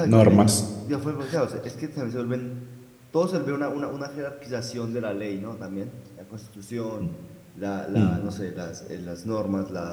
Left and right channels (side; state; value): both; identical; correlation 1.00